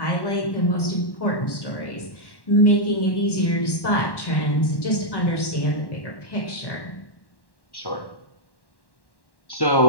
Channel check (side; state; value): right; late; 1.1 ms